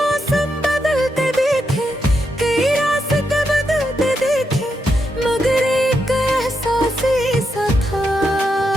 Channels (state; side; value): normal; both; correlation 0.83